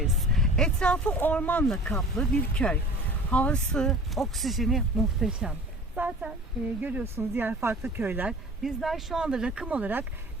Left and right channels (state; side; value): normal; both; correlation 0.43